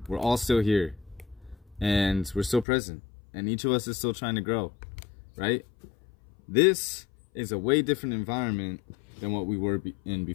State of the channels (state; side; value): drops out; right; at 2.7 s